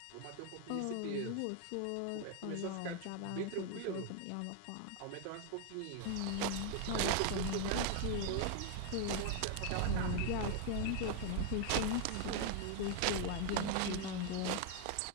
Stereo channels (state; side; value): different; both; correlation 0.01